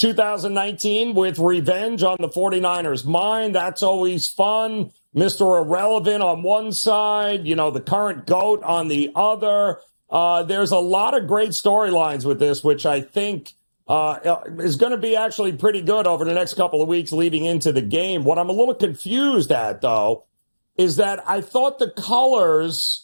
with revenge on the 49ers' mind. That's always fun. Mr. Irrelevant on one side, the current GOAT on the other. There's a lot of great storylines with this, which I think is going to be actually pretty good over the next couple of weeks leading into the game. What I'm a little confused at, though, is that I thought the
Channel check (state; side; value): inverted; both; correlation -1.00